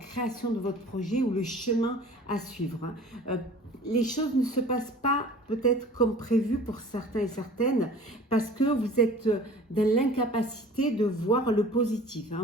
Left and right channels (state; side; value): normal; both; correlation 0.45